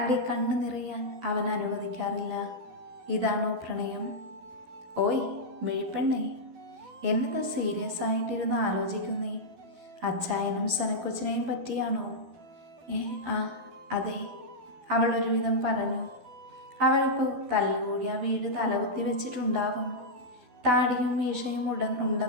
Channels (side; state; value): left; late; 12 ms